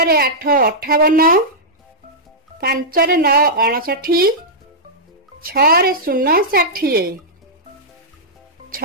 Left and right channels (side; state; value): both; normal; correlation -0.10